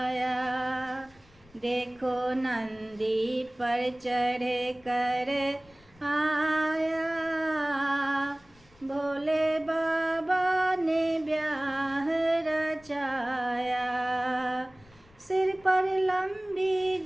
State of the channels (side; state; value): left; noise; rumble, 28 dB below the sound